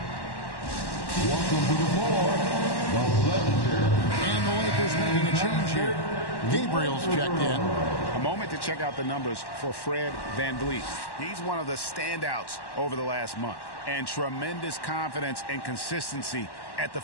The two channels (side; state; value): right; late; 1.1 ms